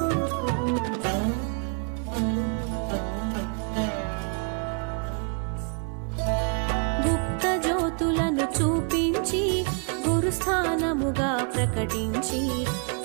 జ్యోతులను చూపించి గురుస్థానముగా ప్రకటించి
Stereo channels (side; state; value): left; quieter; 39.8 dB